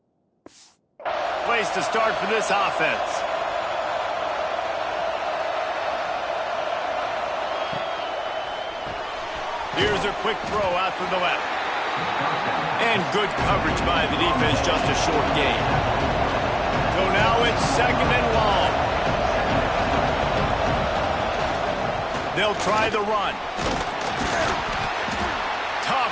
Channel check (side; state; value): both; identical; correlation 1.00